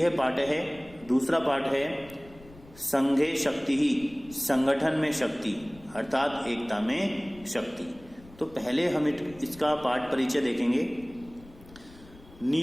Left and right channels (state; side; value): noise; left; rumble, 22 dB below the sound